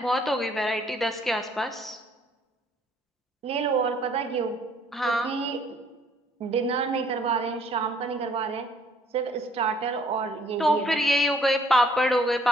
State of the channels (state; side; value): normal; both; correlation 0.61